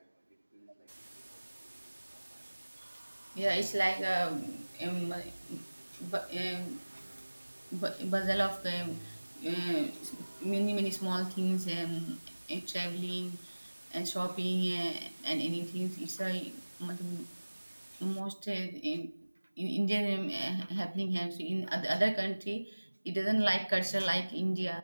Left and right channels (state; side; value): inverted; both; correlation -1.00